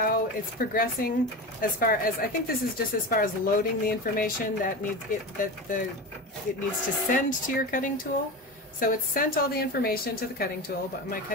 it's progressing as far as, I think this is just as far as loading the information that it needs to send to your cutting tool. So it's sent all the information to the cutting tool, but my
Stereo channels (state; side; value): normal; both; correlation 0.25